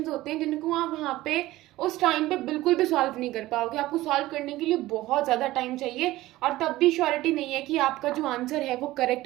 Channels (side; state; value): left; quieter; 17.0 dB